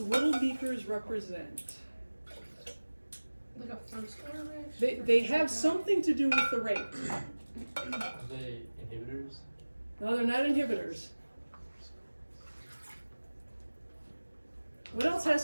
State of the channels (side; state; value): both; inverted; correlation -1.00